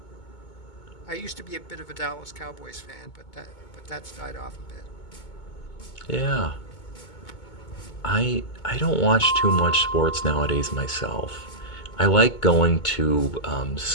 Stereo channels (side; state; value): right; late; 2.2 ms